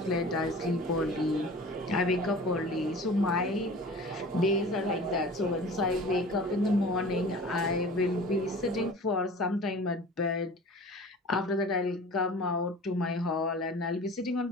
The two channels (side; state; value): both; normal; correlation 0.41